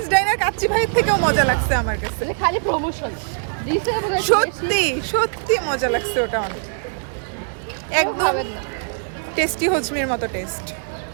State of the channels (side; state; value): left; silent; digital silence